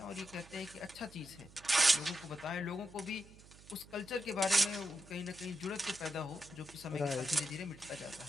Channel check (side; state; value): right; noise; hum, 21 dB below the sound